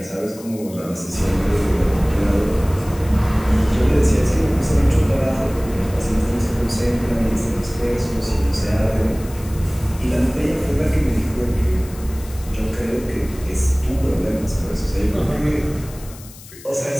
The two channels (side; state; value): left; noise; hiss, 19 dB below the sound